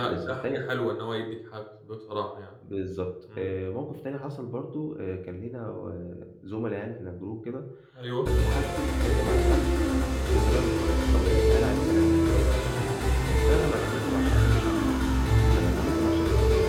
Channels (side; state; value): both; identical; correlation 1.00